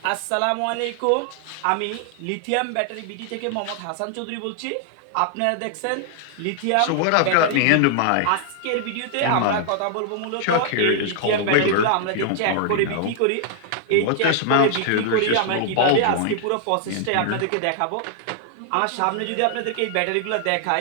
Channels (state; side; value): different; both; correlation 0.00